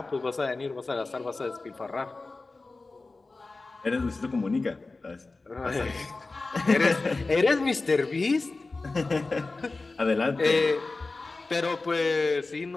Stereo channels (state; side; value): quieter; right; 3.5 dB